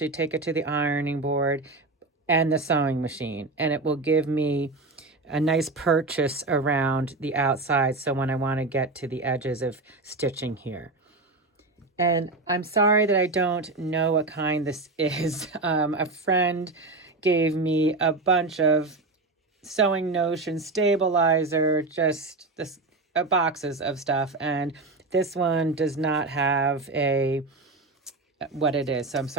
take it to the ironing board and the sewing machine. And it will give me a nice purchase around the outside, so when I want to get to the edges of stitching here. And I'm sorry that I don't know what kind this is. A friend gave me a bunch of Sewing Notion stabilizer, just boxes of stuff, and this one does not have what it is, so I'm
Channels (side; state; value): left; quieter; 3.3 dB